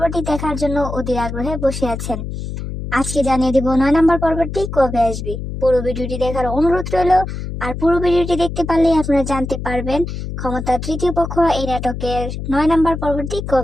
দেখার জন্য অধীর আগ্রহে বসে আছেন। আজকে জানিয়ে দেব 9 নম্বর পর্বটি কবে আসবে। পুরো ভিডিওটি দেখার অনুরোধ রইল। আর পুরো ভিডিওটি দেখতে পারলেই আপনারা জানতে পারবেন ক্ষমতা তৃতীয় পক্ষ এই নাটকের 9 নম্বর পর্বটি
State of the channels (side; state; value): left; noise; hum, 6 dB below the sound